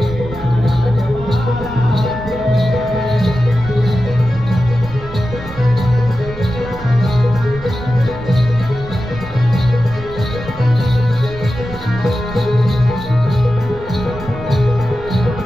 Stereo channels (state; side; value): noise; right; rumble, 14 dB below the sound